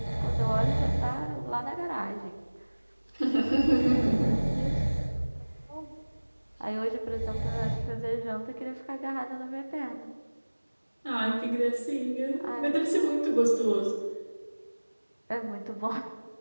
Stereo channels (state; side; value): inverted; both; correlation -1.00